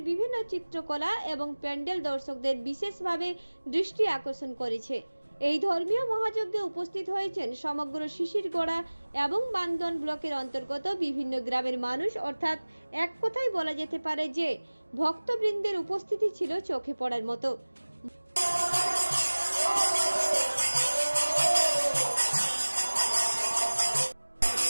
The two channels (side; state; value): both; inverted; correlation -1.00